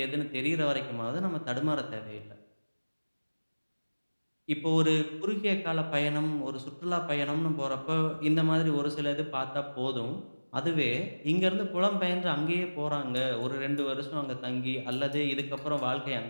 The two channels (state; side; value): inverted; both; correlation -1.00